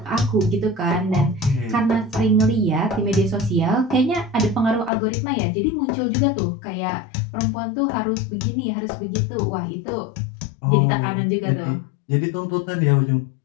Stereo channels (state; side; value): drops out; right; at 4.9 s